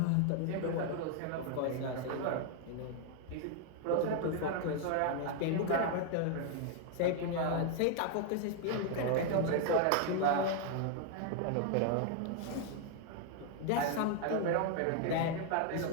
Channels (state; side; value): different; both; correlation 0.00